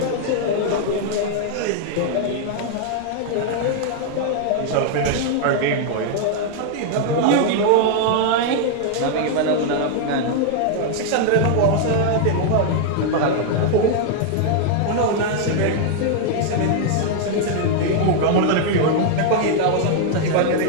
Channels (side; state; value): both; different; correlation 0.00